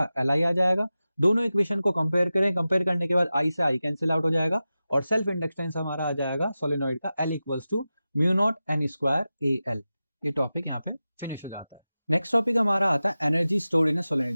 एल आई आ जाएगा। दोनों इक्वेशन को कंपेयर करें, कंपेयर करने के बाद आई से आई कैंसिल आउट हो जाएगा और सेल्फ इंडक्टेंस हमारा आ जाएगा सोलेनॉइड का L equals to mu naught N square A L. ये टॉपिक यहाँ पे फिनिश हो जाता है। नेक्स्ट टॉपिक हमारा आता है एनर्जी स्टोर्ड इन सोलेनॉइड।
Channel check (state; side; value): inverted; both; correlation -0.94